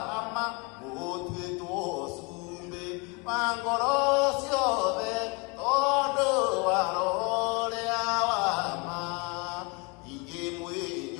ama motue tosumbe mangorosio de todo warore awama inge mwe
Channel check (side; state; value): right; quieter; 30.2 dB